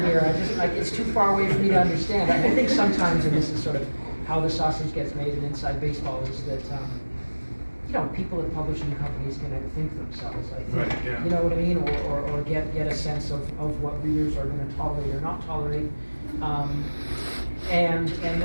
here? I just like, it's too far away for me to understand. I think sometimes, and this is sort of how the sausage gets made in inside baseball, is that you know, people at publishing companies can think themselves, I think. Right, yeah. You know what I mean? Or get a sense of what readers are going to tolerate or not tolerate. And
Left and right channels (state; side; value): inverted; both; correlation -1.00